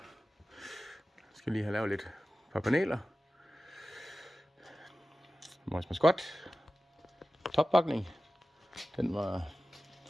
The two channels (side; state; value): both; normal; correlation 0.95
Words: have lavet lidt par paneler. Vores maskot. Toppakning. Den var